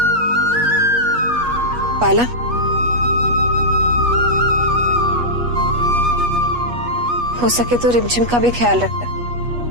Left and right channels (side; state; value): left; late; 8.3 ms